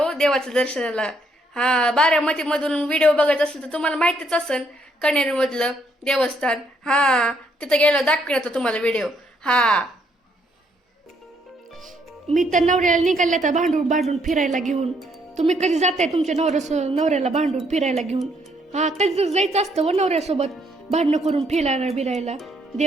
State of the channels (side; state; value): both; normal; correlation 0.71